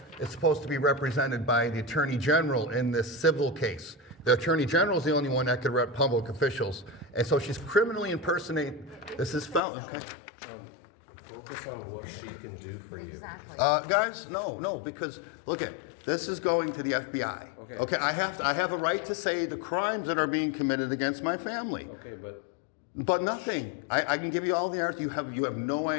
is supposed to be represented by the Attorney General in this civil case. The Attorney General is the only one that could rep public officials. And so she's criminally impersonating, this is felon, okay? Focus on what she can do for you. Exactly. Guys, no, because look at this is going to the FBI. Okay, I have a right to say the crimes that are being committed against my family. Okay, But nothing. I can give you all the answers. You have no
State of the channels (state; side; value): drops out; right; at 9.6 s